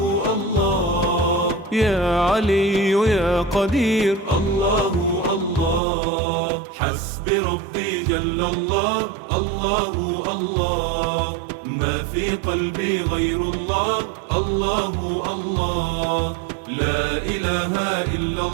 الله، يا علي يا قدير، الله الله. حسبي ربي جل الله، الله الله، ما في قلبي غير الله، الله الله، لا إله إلا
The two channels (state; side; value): drops out; left; at 5.8 s